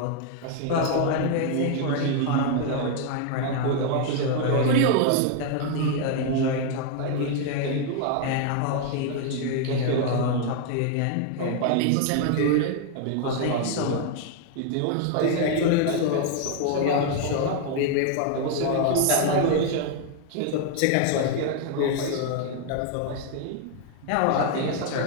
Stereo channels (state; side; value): different; both; correlation 0.00